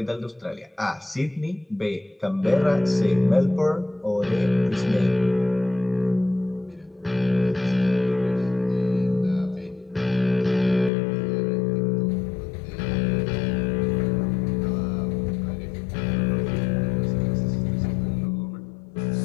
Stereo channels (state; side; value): drops out; right; at 10.9 s